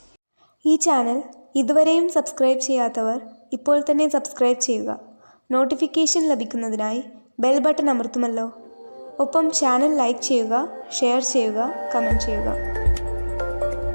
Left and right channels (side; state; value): both; inverted; correlation -1.00